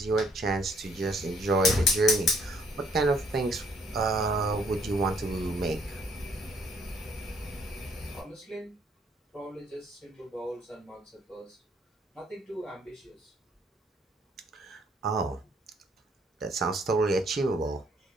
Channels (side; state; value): both; normal; correlation 0.66